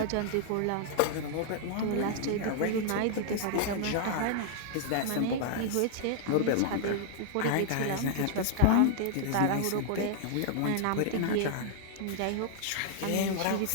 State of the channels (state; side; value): different; both; correlation -0.01